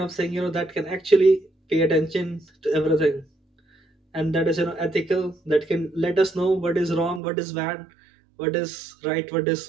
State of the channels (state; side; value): drops out; left; at 7.2 s